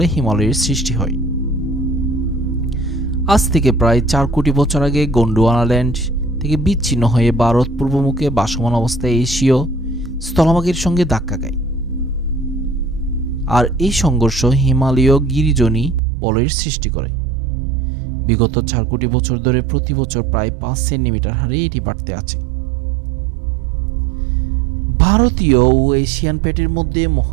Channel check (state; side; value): drops out; left; at 16.0 s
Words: হিমালয়ের সৃষ্টি হয়। আজ থেকে প্রায় 4 কোটি বছর আগে গোন্ডওয়ানাল্যান্ড থেকে বিচ্ছিন্ন হয়ে ভারত পূর্বমুখে ভাসমান অবস্থায় এশীয় স্থলভাগের সঙ্গে ধাক্কা খায়। আর এই সংঘর্ষ হিমালয় গিরিজনী বলয়ের সৃষ্টি করে। বিগত 4 কোটি বছর ধরে প্রতি বছর প্রায় 5 সেন্টিমিটার হারে এটি বাড়তে আছে। ভারতীয় ও এশিয়ান প্লেটের মধ্যে